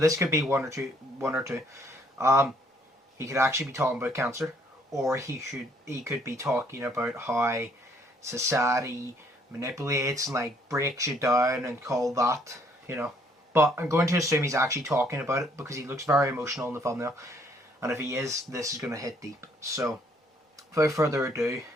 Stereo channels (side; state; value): both; normal; correlation 0.65